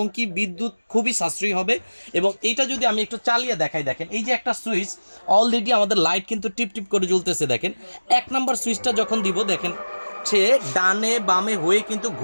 কি বিদ্যুৎ খুবই সাশ্রয়ী হবে। এবং এইটা যদি আমি একটু চালিয়ে দেখাই, দেখেন এই যে একটা সুইচ, অলরেডি আমাদের লাইট কিন্তু টিপ টিপ করে জ্বলতেছে। দেখেন 1 নম্বর সুইচটা যখন দিব, দেখেন সে ডানে বামে হয়ে কিন্তু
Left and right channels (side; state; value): both; inverted; correlation -1.00